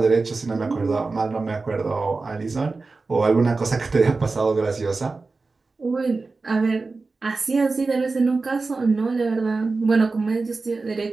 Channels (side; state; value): left; quieter; 3.8 dB